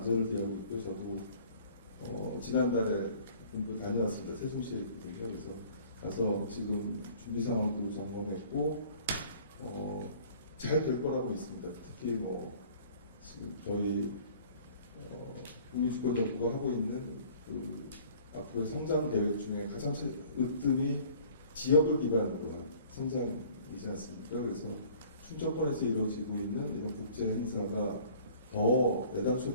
기하고 있고요. 저도 지난달에 분도 다녀왔습니다. 세종시에 있거든요. 그래서 가서 지금 준비 상황도 점검했고 잘 될 거라고 있습니다. 특히 지금 저희 국민주권정부가 하고 있는 그 앞으로의 성장 계획 중에 가장 으뜸이 지역을 기반으로 한 성장이지 않습니까? 그래서 충청권에서 이루어지고 있는 이런 국제 행사가 더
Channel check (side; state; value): both; inverted; correlation -0.52